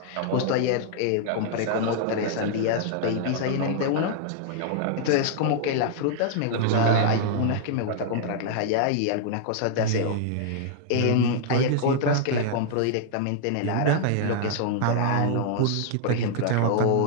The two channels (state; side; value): different; both; correlation -0.01